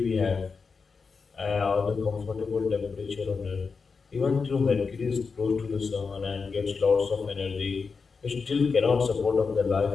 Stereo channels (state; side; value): quieter; right; 5.0 dB